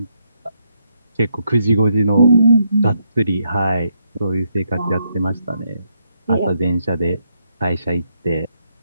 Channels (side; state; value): both; inverted; correlation -0.78